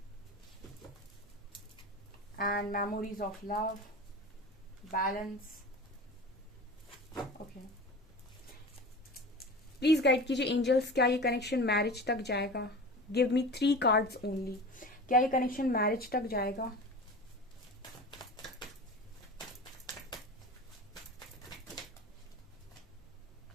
and memories of love, balance. Okay, please guide कीजिए angels, क्या ये connection marriage तक जाएगा? Give me 3 cards only. क्या ये connection marriage तक जाएगा?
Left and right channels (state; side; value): normal; both; correlation 0.33